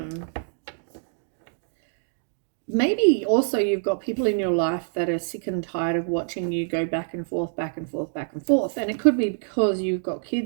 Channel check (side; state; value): left; silent; digital silence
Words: Maybe also you've got people in your life that are sick and tired of watching you go back and forth, back and forth, back and forth. And it could be because you've got